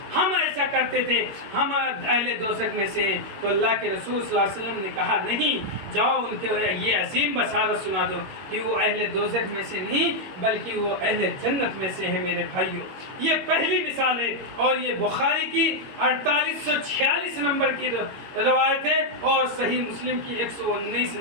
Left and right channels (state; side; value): late; left; 21 ms